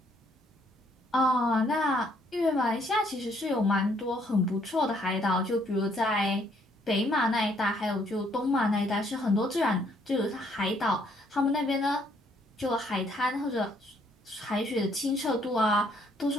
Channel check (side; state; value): both; normal; correlation 0.67